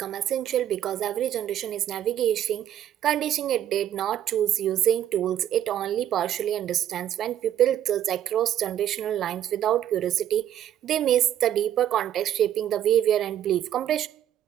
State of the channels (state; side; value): quieter; left; 11.1 dB